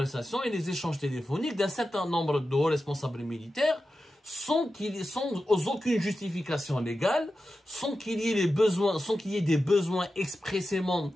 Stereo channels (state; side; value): normal; both; correlation 0.92